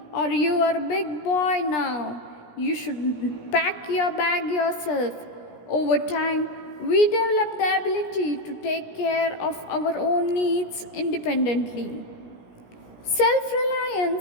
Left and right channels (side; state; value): right; late; 17 ms